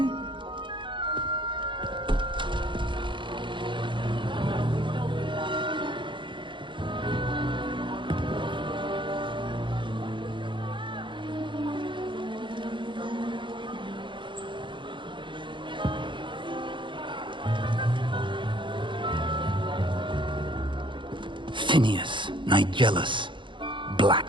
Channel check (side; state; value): left; late; 0.23 ms